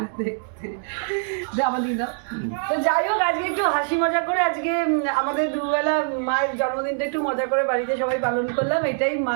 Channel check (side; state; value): left; silent; digital silence